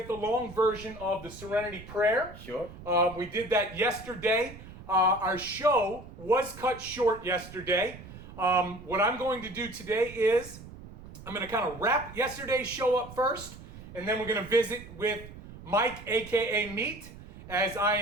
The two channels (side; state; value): right; noise; rumble, 16 dB below the sound